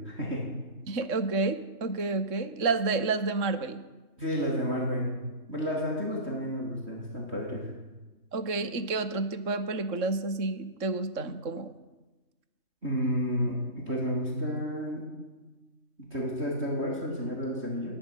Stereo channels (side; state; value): left; late; 3.6 ms